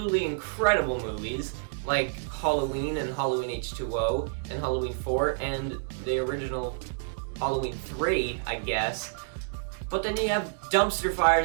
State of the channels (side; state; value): left; silent; digital silence